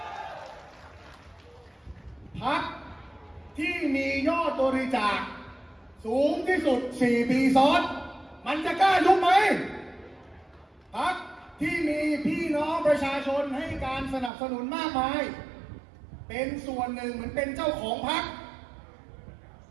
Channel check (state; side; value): drops out; left; at 14.3 s